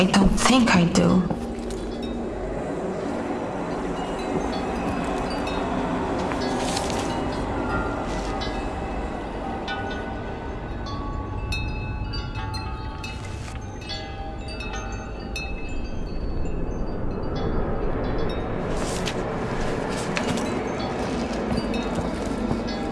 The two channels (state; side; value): identical; both; correlation 1.00